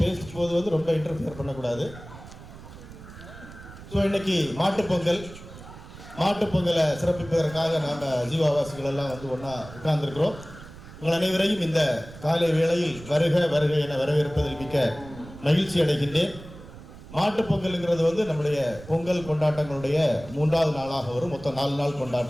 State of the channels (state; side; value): noise; right; rumble, 16 dB below the sound